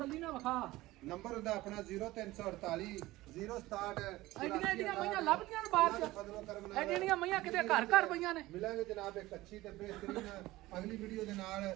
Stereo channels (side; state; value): left; quieter; 18.1 dB